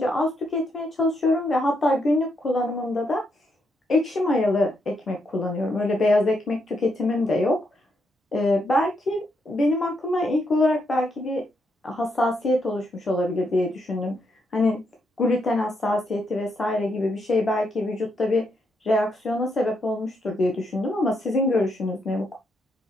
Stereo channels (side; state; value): both; normal; correlation 0.79